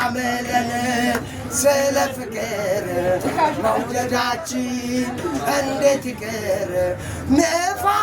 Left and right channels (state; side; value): identical; both; correlation 1.00